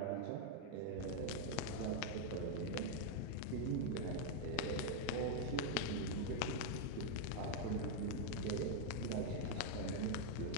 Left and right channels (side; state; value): both; different; correlation 0.00